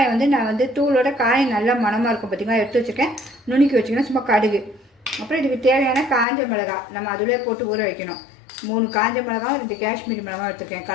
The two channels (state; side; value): drops out; right; at 6.2 s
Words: நான் தூளோட காயம் நல்லா மணமாக இருக்கும் பார்த்திங்களா, எடுத்து வச்சுருக்கேன். நுணுக்கி வச்சுக்கணும். சும்மா கடுகு. அப்புறம் இதுக்கு தேவையான காஞ்ச மிளகாய் நம்ம அதிலே போட்டு ஊற வைக்கணும். 3 காஞ்ச மிளகாவும் 2 காஷ்மீரி மிளகாவும் எடுத்துருக்கேன்,